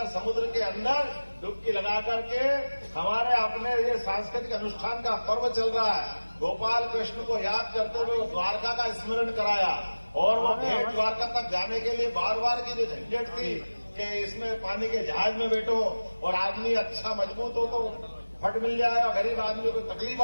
समुद्र के अंदर डुबकी लगा करके हमारे अपने ये सांस्कृतिक अनुष्ठान का पर्व चल रहा है। गोपाल कृष्ण को याद करते हुए द्वारका का स्मरण कराया, और वो भेंट द्वारका तक जाने के लिए बार बार की जो झंझट थी कि इसमें पानी के जहाज में बैठो और आदमी अच्छा मजबूत हो तो फट मिल जाए, और गरीब आदमी को तकलीफ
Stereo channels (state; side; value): inverted; both; correlation -1.00